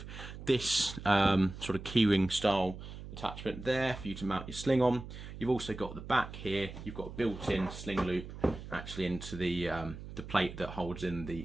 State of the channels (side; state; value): right; noise; hum, 12 dB below the sound